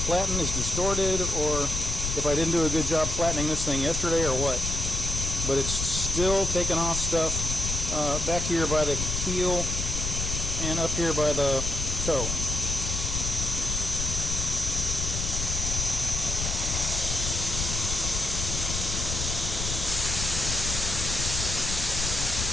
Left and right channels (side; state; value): left; noise; rumble, 3 dB below the sound